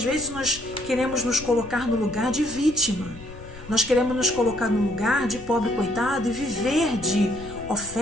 vezes nós queremos nos colocar no lugar de vítima, nós queremos nos colocar no lugar de pobre coitado e viver de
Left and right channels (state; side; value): noise; left; rumble, 16 dB below the sound